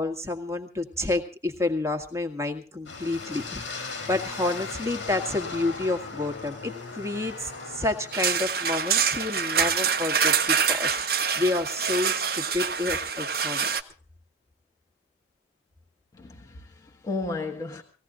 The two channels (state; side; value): normal; both; correlation 0.30